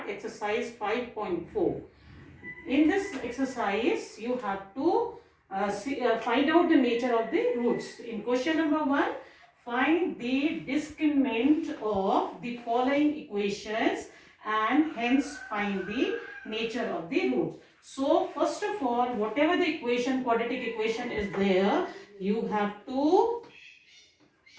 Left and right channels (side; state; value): both; identical; correlation 1.00